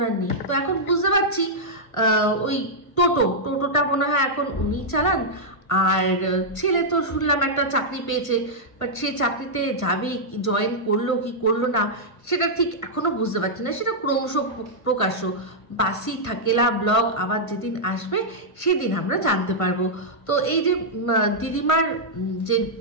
নেই। তো এখন বুঝতে পারছি ওই টোটোটা মনে হয় এখন উনি চালান। আর ছেলে তো শুনলাম একটা চাকরি পেয়েছে, বাট সেই চাকরিতে যাবে, জয়েন করলো কি করলো না সেটা ঠিক এখনো বুঝতে পারছি না। সেটা ক্রমশ প্রকাশ্য, বাসি থাকেলা ব্লগ আবার যেদিন আসবে সেদিন আমরা জানতে পারবো। তো এই যে দিদিমার যে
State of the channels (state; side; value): late; right; 1.5 ms